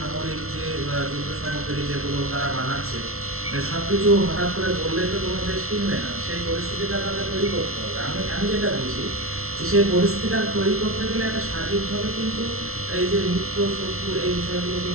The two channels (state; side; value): late; left; 0.63 ms